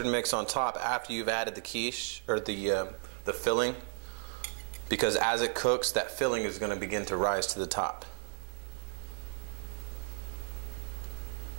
mix on top after you've added the quiche, or the filling, because as it cooks, that filling is going to begin to rise to the top.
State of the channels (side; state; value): left; silent; digital silence